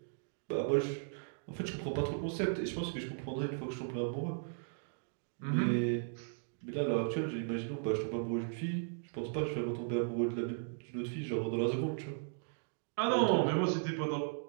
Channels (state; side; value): silent; left; digital silence